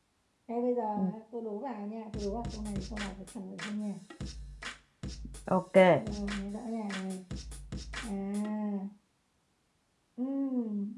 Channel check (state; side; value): identical; both; correlation 1.00